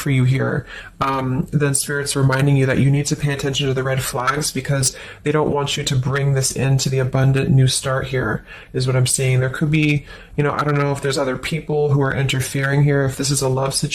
you here, then Spirit's reminding you that you need to pay attention to the red flags, because they don't want you to bring this into the abundant new start here, is what I'm saying. There could be, you know, I don't know if there's other people who are interfering here. If this is a love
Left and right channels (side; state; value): both; identical; correlation 1.00